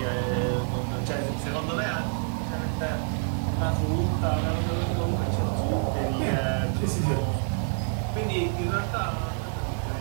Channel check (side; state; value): left; silent; 60 dB below the other